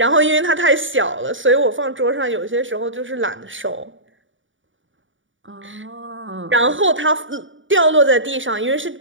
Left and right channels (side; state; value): left; late; 0.56 ms